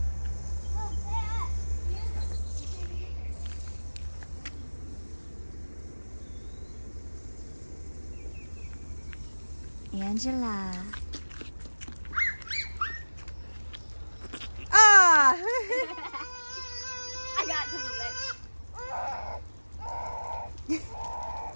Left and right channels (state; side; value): inverted; both; correlation -1.00